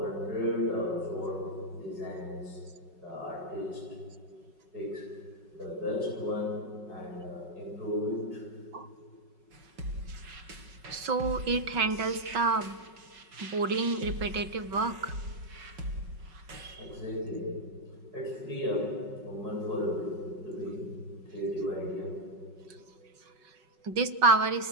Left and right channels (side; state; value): left; late; 5.4 ms